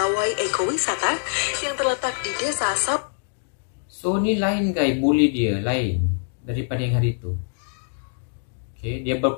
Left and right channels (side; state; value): right; silent; digital silence